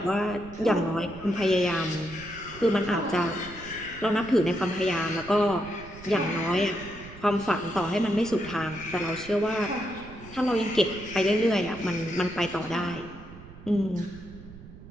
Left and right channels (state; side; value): noise; right; rumble, 17 dB below the sound